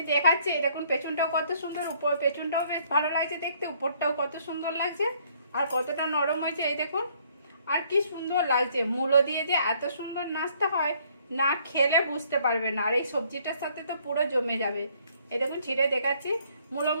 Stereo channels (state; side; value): inverted; both; correlation -0.64